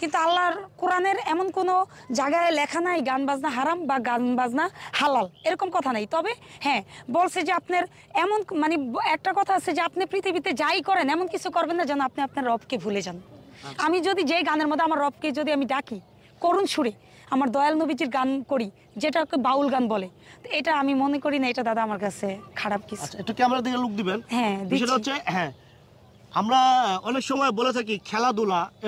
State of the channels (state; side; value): identical; both; correlation 1.00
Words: কিন্তু আল্লাহর কোরআনের এমন কোনো জায়গায় লেখা নাই গান বাজনা হারাম বা গান বাজনা হালাল এরকম কথা নাই তবে হ্যাঁ বলছে যে আপনার এমন মানে একটা কথা আছে যে আপনি পৃথিবীতে যাই করেন এমন কিছু করবেন না যেন আপনি আপনার রবকে ভুলে যান আমি যদি যেই গানের মধ্যে আমার রবকে যদি আমি ডাকি করুণ সুরে আমার দয়াল নবীজির গান করি যেটাকে বাউল গান বলে তো এটা আমি মনে করি না এটা দাদা আমার কাছে খারাপ কিছু একটু ক্যামেরা দিকে লুক দিবেন হ্যাঁ বিষয়টা হচ্ছে হ্যাঁ আমরা অনেক সময় বলে থাকি খেলাধুলা